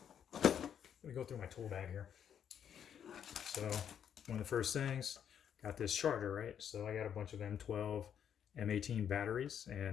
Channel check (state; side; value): quieter; right; 8.7 dB